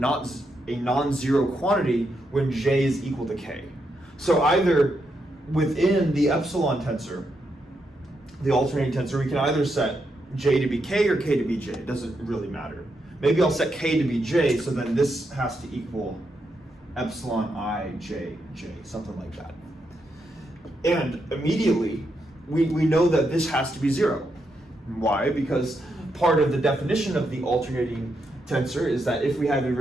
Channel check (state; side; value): normal; both; correlation 0.82